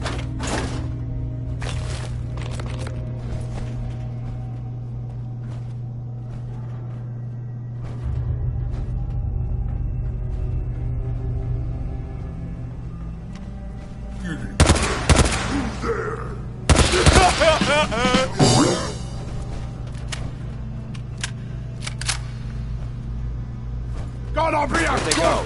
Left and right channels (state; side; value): identical; both; correlation 1.00